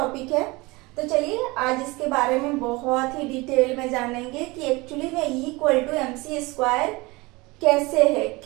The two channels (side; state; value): left; quieter; 23.5 dB